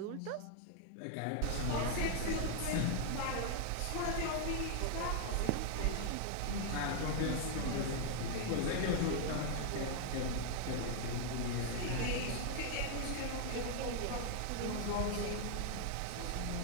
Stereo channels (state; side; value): different; both; correlation 0.00